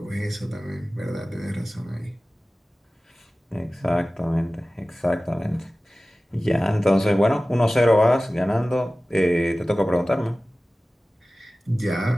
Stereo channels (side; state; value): both; normal; correlation 0.97